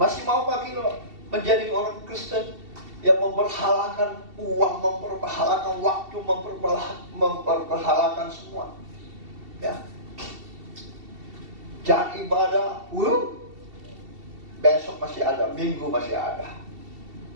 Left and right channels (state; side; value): late; left; 2.7 ms